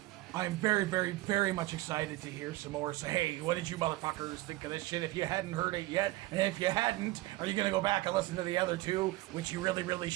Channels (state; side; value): quieter; left; 18.7 dB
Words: I'm very much excited to hear some more. So, hey, what did you motherfuckers think of this shit if you hadn't heard it yet? And if you hadn't, are you gonna go back and listen to the other two, which you really